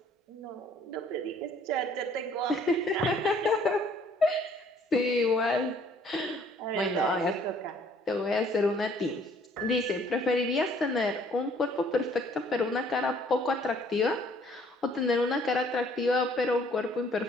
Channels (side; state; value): both; normal; correlation 0.60